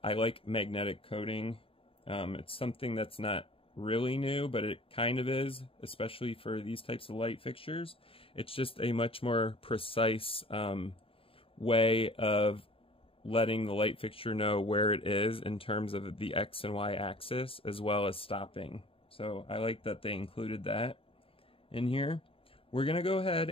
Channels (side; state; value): right; late; 0.27 ms